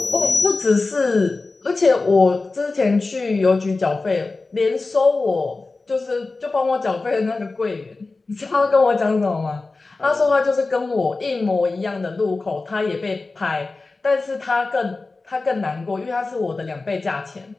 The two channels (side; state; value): right; quieter; 3.6 dB